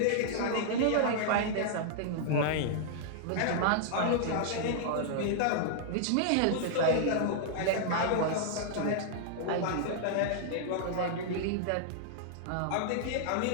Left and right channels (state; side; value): different; both; correlation -0.01